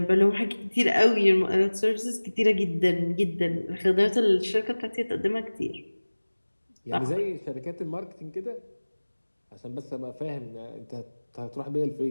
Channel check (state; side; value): inverted; both; correlation -1.00